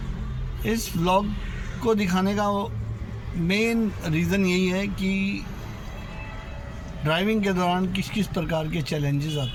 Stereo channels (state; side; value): identical; both; correlation 1.00